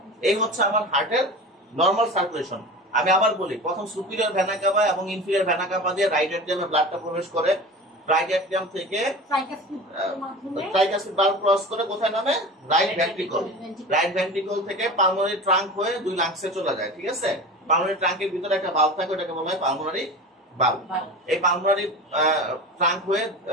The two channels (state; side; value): normal; both; correlation 0.33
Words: এই হচ্ছে আমার হার্টের নরমাল সার্কুলেশন। আমি আবার বলি, প্রথম সুপিরিয়র ভেনা কাভা এবং ইনফিরিয়র ভেনা কাভা দিয়ে রাইট এট্রিয়ামে ব্লাডটা প্রবেশ করে, রাইট অ্যাট্রিয়াম থেকে মাধ্যমে ট্রাইকাসিড ভালভ ক্রস করে কোথায় নামে? Right ventricle. রাইট ভেন্ট্রিকল থেকে পালমোনারি ট্রাঙ্ক হয়ে দুই লাংসে চলে যায়, ঠিক আছে? পালমোনারি ট্রাঙ্কের ভিতরে একটা ভালভ থাকে, ওটাকে বলা হয় পালমোনারি ভালভ। এই পালমোনারি ট্রাঙ্ক হয়ে